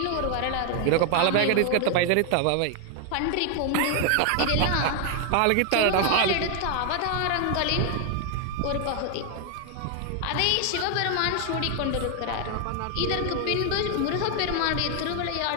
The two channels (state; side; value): different; both; correlation 0.00